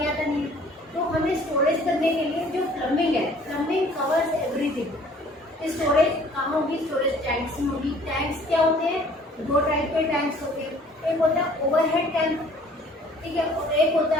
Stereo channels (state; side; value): normal; both; correlation 0.54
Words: आता नहीं है, तो हमें स्टोरेज करने के लिए जो प्लम्बिंग है, प्लम्बिंग कवर्स एवरीथिंग। स्टोरेज कहाँ होगी, स्टोरेज टैंक्स में होगी। टैंक्स क्या होते हैं, दो टाइप के टैंक्स होते हैं, एक होता है ओवरहेड टैंक, ठीक है, और एक होता है